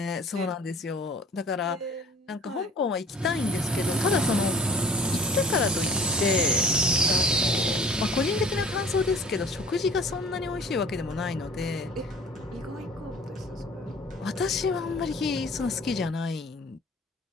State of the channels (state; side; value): normal; both; correlation 0.48